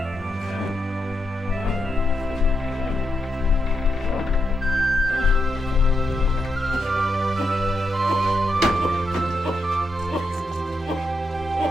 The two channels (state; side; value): normal; both; correlation 0.82